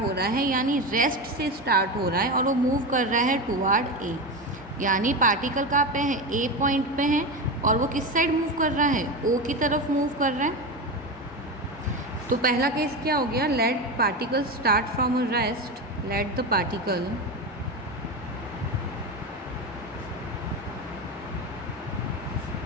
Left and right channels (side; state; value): both; normal; correlation 0.19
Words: रहा है, यानी रेस्ट से स्टार्ट हो रहा है, और वो मूव कर रहा है टुवार्ड ए। यानी पार्टिकल कहाँ पे है, ए पॉइंट पे है, और वो किस साइड मूव कर रहा है, ओ की तरफ मूव कर रहा है। तो पहला केस क्या हो गया, let particle start from a rest, let the particle